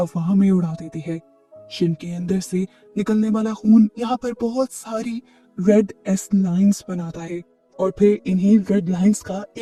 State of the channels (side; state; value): both; identical; correlation 1.00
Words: में उड़ा देती है। शिन के अंदर से निकलने वाला खून यहाँ पर बहुत सारी रेड एस लाइंस बनाता है और फिर इन्हीं रेड लाइंस का